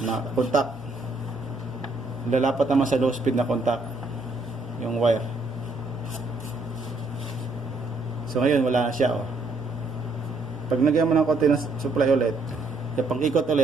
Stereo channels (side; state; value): left; quieter; 3.1 dB